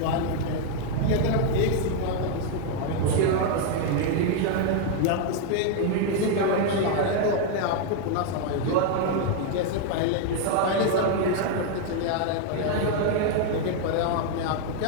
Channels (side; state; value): both; different; correlation 0.00